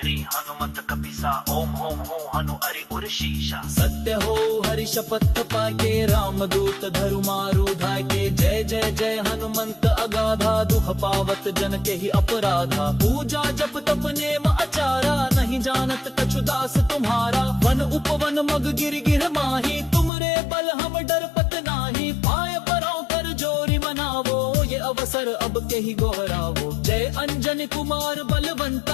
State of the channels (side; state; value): right; drops out; at 20.1 s